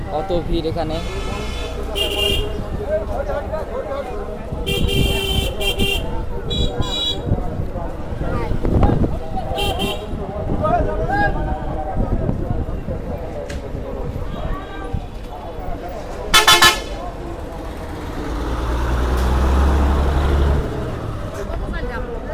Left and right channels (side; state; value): both; identical; correlation 1.00